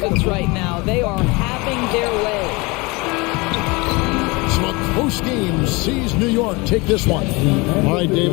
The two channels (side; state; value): right; quieter; 25.8 dB